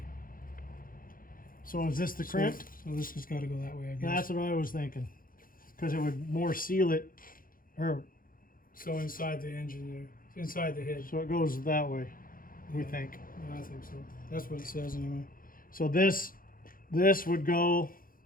So is this the crimped? So this has got to go that way, I guess. That's what I was thinking. Because it would more seal it. Or So inside the engine there, inside the head. so it goes that way, we Yeah. think. Yeah, I think so. That's what it says anyway. So this would go,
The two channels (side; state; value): right; late; 0.41 ms